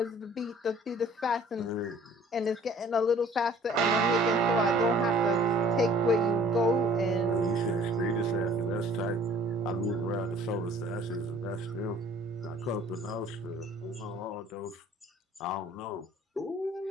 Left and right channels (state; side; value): normal; both; correlation 0.54